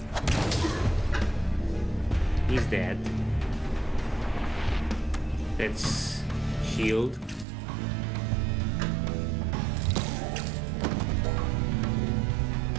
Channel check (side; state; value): left; drops out; at 7.5 s